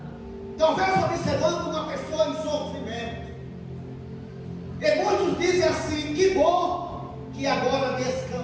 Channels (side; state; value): both; identical; correlation 1.00